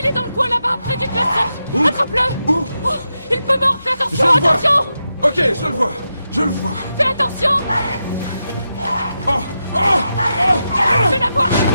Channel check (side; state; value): both; inverted; correlation -0.87